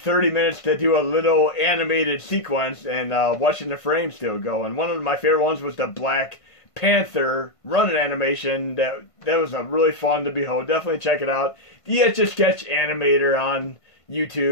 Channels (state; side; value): late; right; 1.5 ms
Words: minutes to do a little animated sequence, and watching the frame still go. And one of my favorite ones was the Black Panther running animation. That was really fun to behold. Definitely check it out. The Etch-a-Sketch animator on